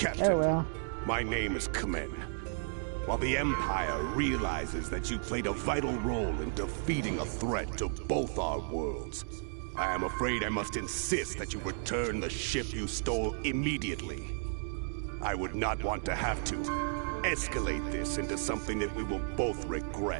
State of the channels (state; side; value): silent; left; digital silence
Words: Oh well. my name is Kamen. While the Empire realizes that you played a vital role in defeating a threat to both our worlds, I am afraid I must insist that you return the ship you stole immediately. I would not want to have to escalate this into something that we will both